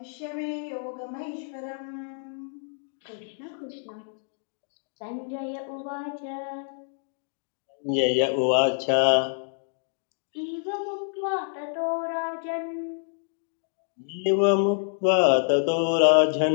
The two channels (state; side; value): silent; right; digital silence